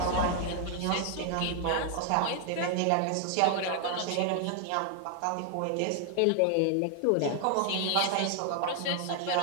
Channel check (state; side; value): different; both; correlation 0.00